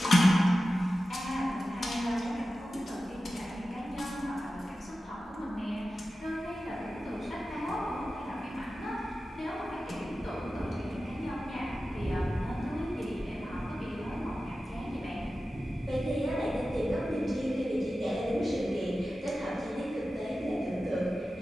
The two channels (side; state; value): both; normal; correlation 0.94